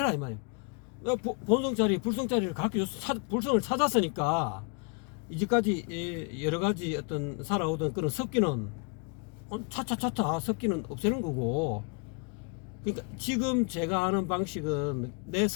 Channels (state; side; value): quieter; right; 36.5 dB